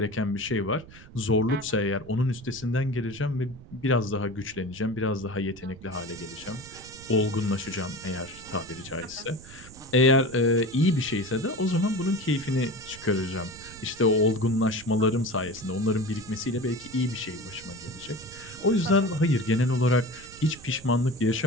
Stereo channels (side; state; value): right; noise; rumble, 19 dB below the sound